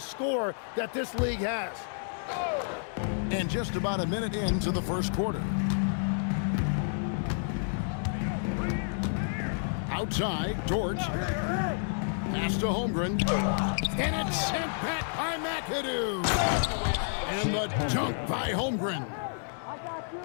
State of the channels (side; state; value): right; silent; digital silence